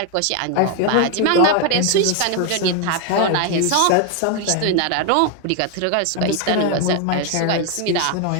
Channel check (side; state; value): both; different; correlation 0.01